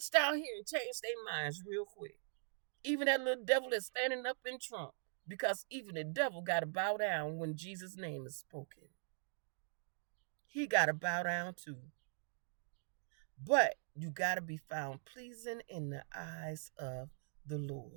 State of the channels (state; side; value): silent; left; digital silence